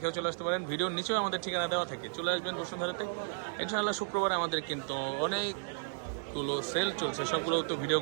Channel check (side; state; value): left; silent; digital silence